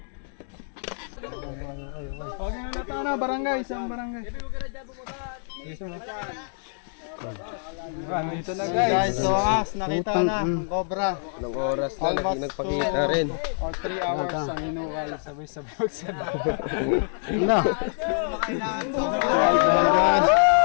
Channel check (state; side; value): silent; right; digital silence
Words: Okay na natin na, barangay, isang barangay. Dito na guys, so nakita na ang cobra. Ilang oras na nagpakita rin. Or 3 hours ang inuwal sabay-sabay sa Na.